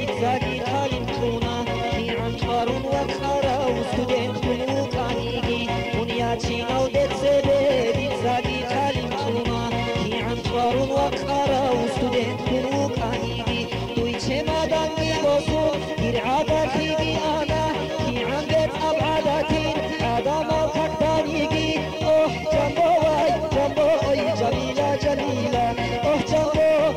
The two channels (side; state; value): both; identical; correlation 1.00